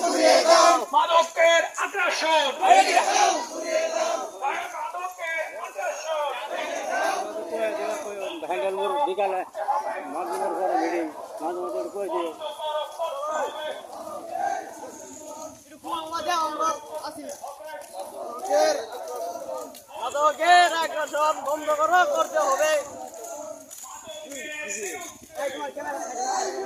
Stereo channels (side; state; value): both; identical; correlation 1.00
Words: মাদকের আগ্রাসন, বিকালে মাঝে পরে মিটিং মাঝে মাঝে কয়েছে মাদকের আগ্রাসন বন্ধ করতে হবে।